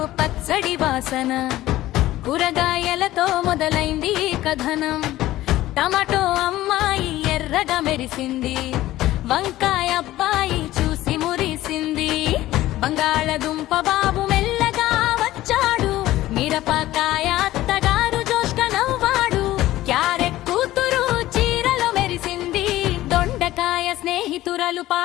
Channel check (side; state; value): right; quieter; 15.6 dB